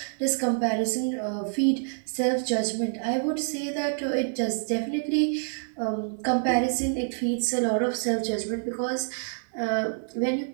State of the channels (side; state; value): left; silent; 60 dB below the other